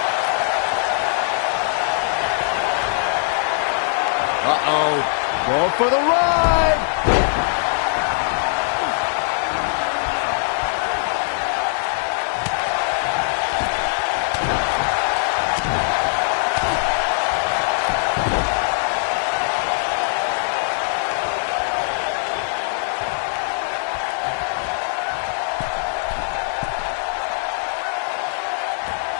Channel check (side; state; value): right; silent; 65 dB below the other